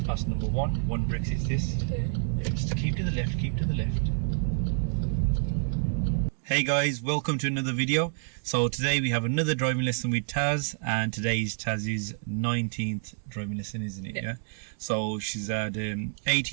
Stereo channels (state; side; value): silent; left; digital silence